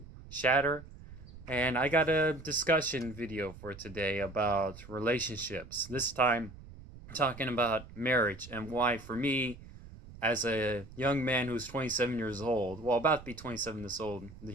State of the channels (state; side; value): noise; right; rumble, 16 dB below the sound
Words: shatter. And I got a discussion video for today about relationships. This time, talking about marriage and why, for me, as a young man who's 27 years old, well, about to be 27